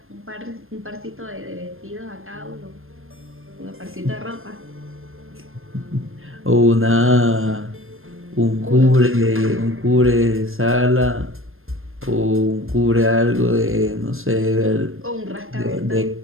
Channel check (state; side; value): late; left; 0.60 ms